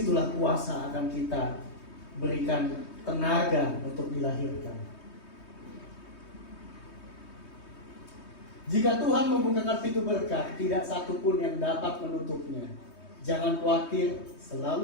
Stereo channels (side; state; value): right; late; 3.2 ms